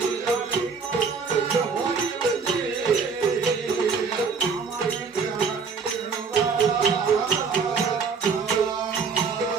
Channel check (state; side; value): quieter; left; 5.3 dB